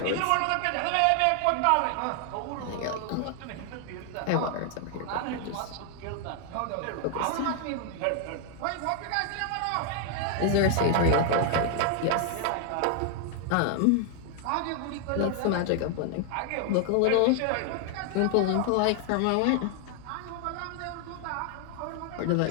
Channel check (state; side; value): different; both; correlation 0.00